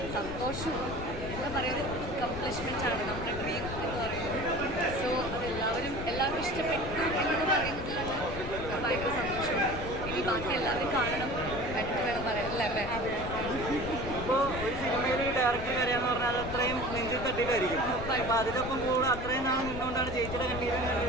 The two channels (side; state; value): left; noise; rumble, 8 dB below the sound